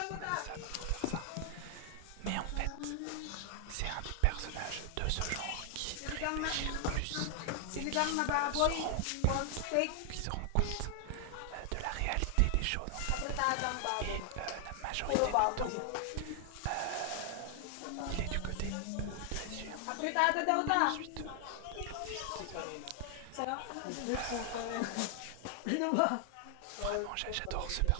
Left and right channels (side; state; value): both; different; correlation 0.00